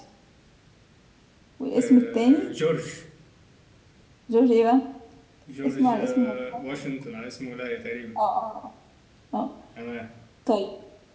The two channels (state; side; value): identical; both; correlation 1.00